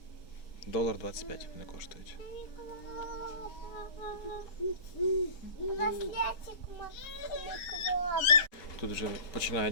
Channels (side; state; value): right; late; 5.4 ms